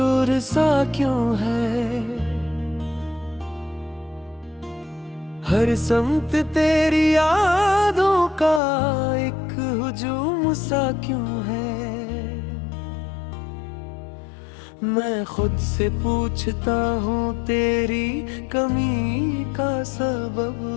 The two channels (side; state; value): right; drops out; at 8.6 s